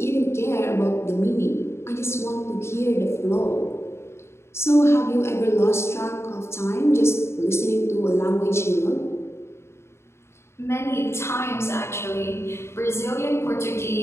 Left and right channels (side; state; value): right; late; 0.13 ms